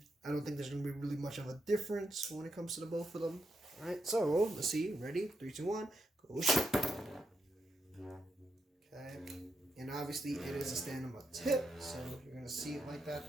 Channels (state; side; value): normal; both; correlation 0.82